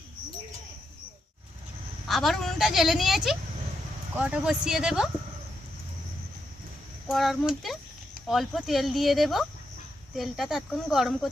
আবার উনুনটা জ্বেলে নিয়েছি, কড়াটা বসিয়ে দেব। কড়ার মধ্যে অল্প তেল দিয়ে দেব। তেলটা ততক্ষণ গরম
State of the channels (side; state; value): both; normal; correlation 0.82